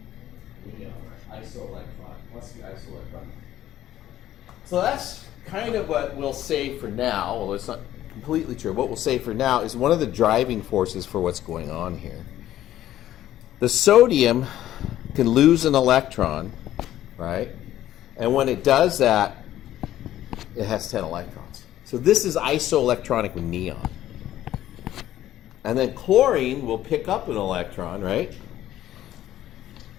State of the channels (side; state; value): right; quieter; 13.0 dB